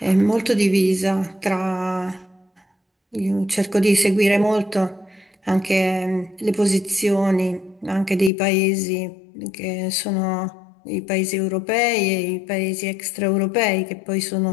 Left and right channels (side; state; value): right; drops out; at 8.3 s